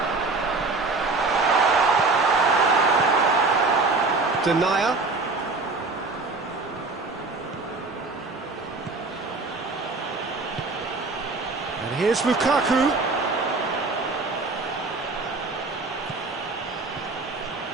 Denier. And here's Lukaku.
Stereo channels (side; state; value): left; quieter; 3.7 dB